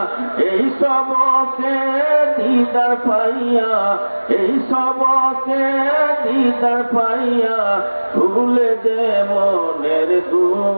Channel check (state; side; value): inverted; both; correlation -1.00